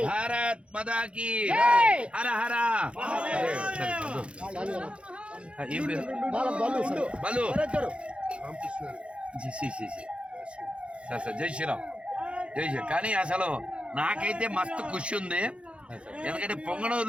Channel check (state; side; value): late; left; 0.059 ms